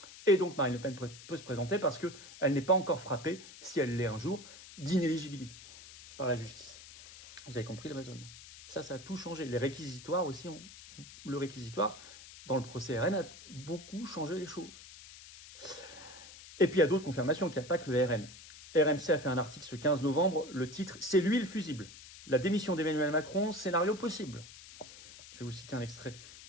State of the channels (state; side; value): noise; left; hiss, 17 dB below the sound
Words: Et donc, Marine Le Pen peut se présenter parce qu'elle n'est pas encore frappée, si elle l'est un jour, d'inéligibilité par la justice. Vous avez compris le raisonnement. Ça a tout changé. Les réquisitoires aussi, le réquisitoire, dans le procès RN, a beaucoup changé les choses. Et puis, il y a d'autres confirmations, qu'il n'y a pas que le RN. RMC a fait un article ce 15 novembre, le titre « C'est lui le fusible ». La démission d'Emmanuel Macron, scénario possible. Je vais vous citer un extrait